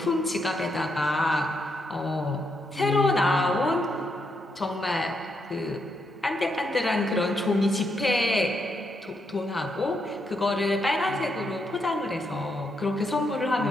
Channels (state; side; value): normal; both; correlation 0.79